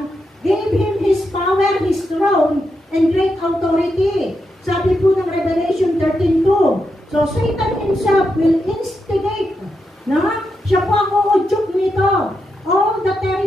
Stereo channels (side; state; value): both; normal; correlation 0.85